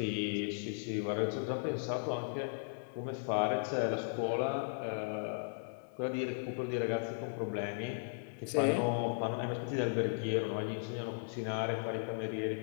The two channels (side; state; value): right; silent; digital silence